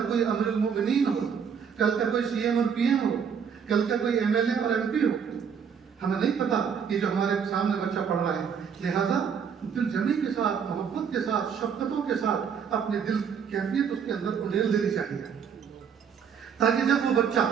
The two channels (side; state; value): left; quieter; 7.1 dB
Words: کوئی امیر المؤمنین ہو, کل کا کوئی سی ایم اور پی ایم ہو, کل کا کوئی ایم ایل اے اور ایم پی ہو. ہمیں نہیں پتا یہ جو ہمارے سامنے بچہ پڑھ رہا ہے. لہذا دل جمی کے ساتھ, محبت کے ساتھ, شفقتوں کے ساتھ اپنے دل کیفیت اس کے اندر انڈیل دینی چاہیے, تاکہ جب وہ بچہ